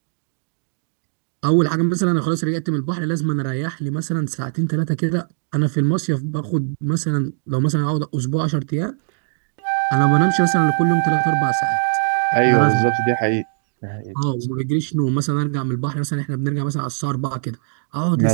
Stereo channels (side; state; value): left; silent; digital silence